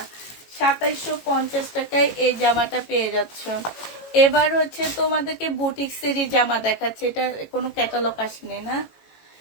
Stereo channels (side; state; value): right; late; 18 ms